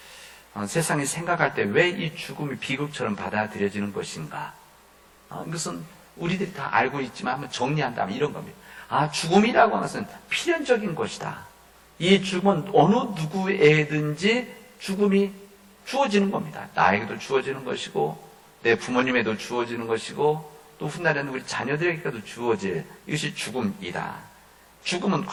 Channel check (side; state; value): both; identical; correlation 1.00